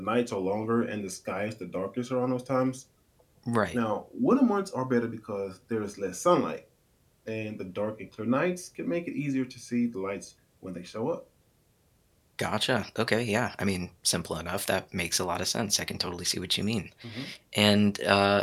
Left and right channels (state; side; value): identical; both; correlation 1.00